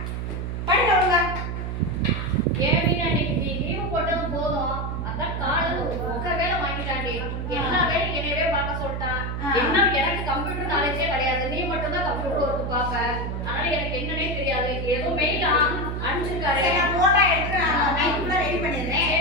படிக்க ஒழுங்கா. ஏன் மீனா இன்னைக்கு நீ லீவ் போட்டது போதும். அதான் காலையில ஒரு வேலை வாங்கிட்டாண்டி. எல்லா வேலையும் என்னையவே பார்க்க சொல்லிட்டான். என்ன எனக்கு கம்ப்யூட்டர் நாலேஜே கிடையாது. நீ மட்டும் தான் கம்ப்யூட்டர் ஒர்க் பார்ப்ப. அதனால எனக்கு என்னன்னே தெரியாது. ஏதோ மெயில் அனுப்பிச்சிருக்காரு. நான் போட்டோ எடுத்து நான் நைட்டுக்குள்ள ரெடி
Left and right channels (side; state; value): right; noise; hum, 3 dB below the sound